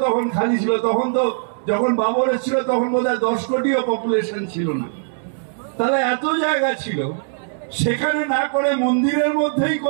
তখন খালি ছিল। তখন তো যখন বাবর ছিল তখন বোধহয় 10 কোটিও পপুলেশন ছিল না, তাহলে এত জায়গা ছিল, সেখানে না করে মন্দিরের মধ্যেই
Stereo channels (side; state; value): left; silent; 65 dB below the other